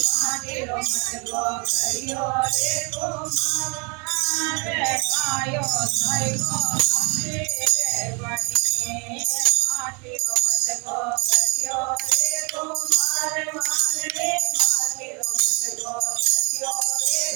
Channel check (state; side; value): quieter; left; 32.1 dB